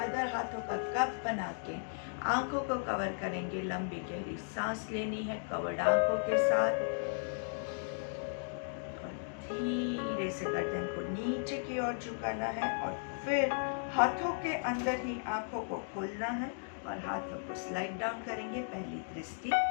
हाथों का कप बना के आंखों को कवर करेंगे। लंबी गहरी सांस लेनी है कवर्ड आंखों के साथ, और धीरे से गर्दन को नीचे की ओर झुकाना है, और फिर हाथों के अंदर ही आंखों को खोलना है और हाथों को स्लाइड डाउन करेंगे। पहली दृष्टि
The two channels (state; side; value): silent; right; digital silence